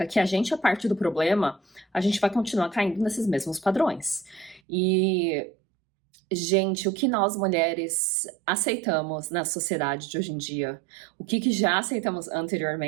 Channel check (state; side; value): drops out; left; at 4.6 s